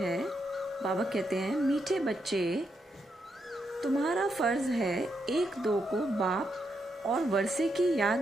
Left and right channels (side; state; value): both; normal; correlation 0.81